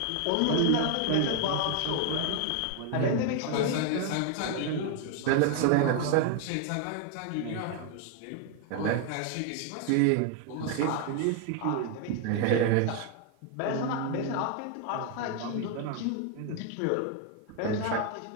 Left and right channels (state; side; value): different; both; correlation 0.01